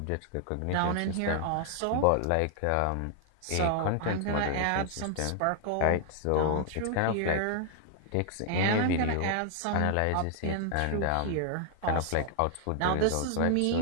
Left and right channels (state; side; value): different; both; correlation 0.00